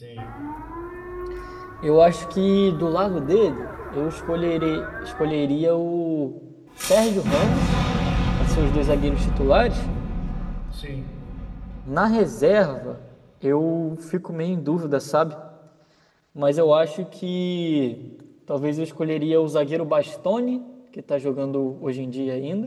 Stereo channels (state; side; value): identical; both; correlation 1.00